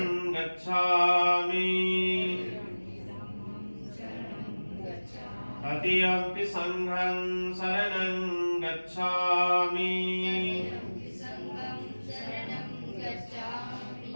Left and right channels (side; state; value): both; inverted; correlation -1.00